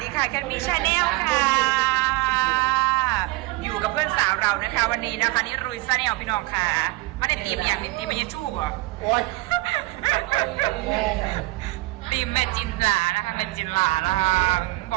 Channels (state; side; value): quieter; left; 21.0 dB